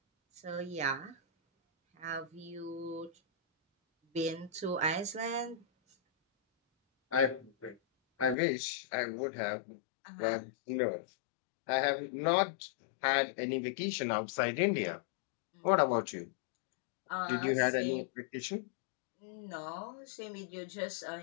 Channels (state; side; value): drops out; right; at 8.3 s